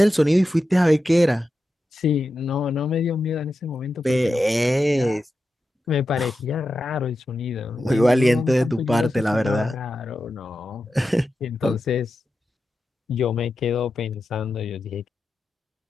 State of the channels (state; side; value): normal; both; correlation 0.91